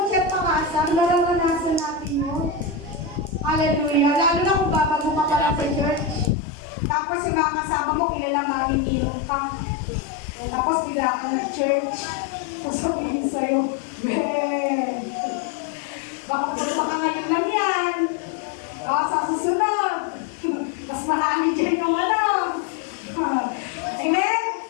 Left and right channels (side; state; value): right; drops out; at 6.4 s